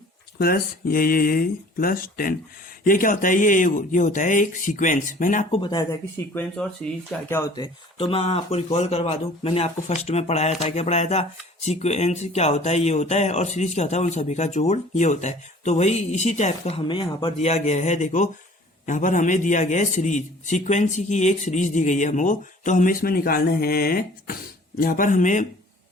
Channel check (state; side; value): normal; both; correlation 0.50